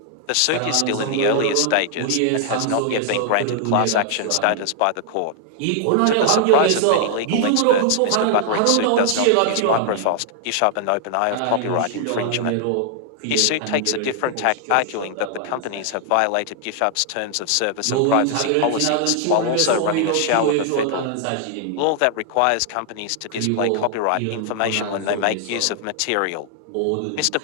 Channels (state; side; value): different; both; correlation 0.00